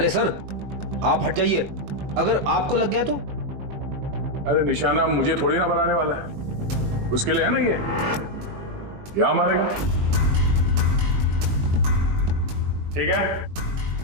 सर, आप हट जाइए। अगर आपको लग गया तो? अरे निशाना मुझे थोड़ी ना बनाने वाला है, उसके लिए है ना ये। यहां मारेगा। ठीक है,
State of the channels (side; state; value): left; late; 21 ms